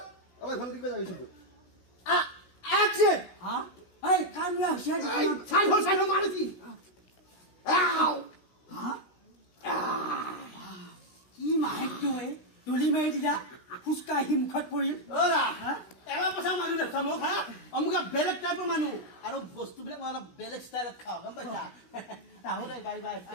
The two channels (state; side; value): late; right; 16 ms